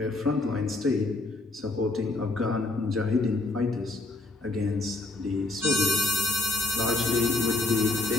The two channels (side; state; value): right; quieter; 3.1 dB